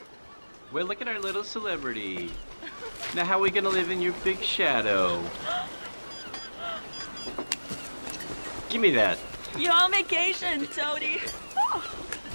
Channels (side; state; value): both; inverted; correlation -1.00